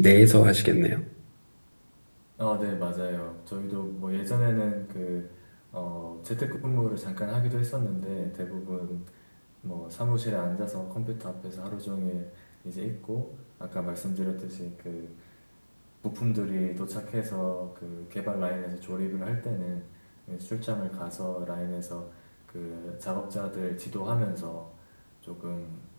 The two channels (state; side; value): inverted; both; correlation -1.00